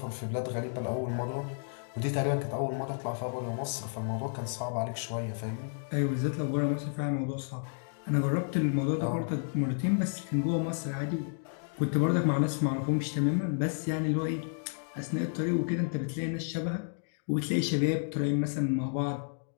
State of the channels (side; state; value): right; silent; digital silence